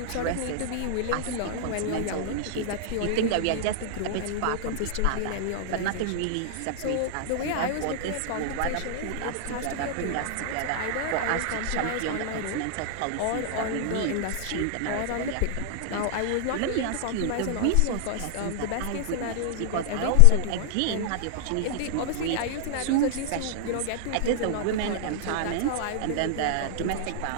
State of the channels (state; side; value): different; both; correlation -0.01